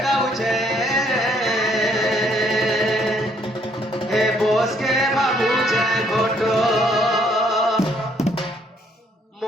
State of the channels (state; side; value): normal; both; correlation 0.67